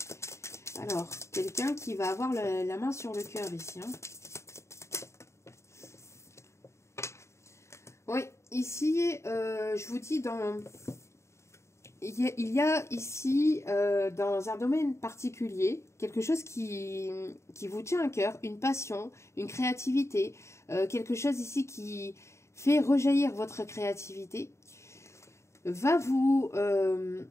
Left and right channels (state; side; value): late; right; 0.14 ms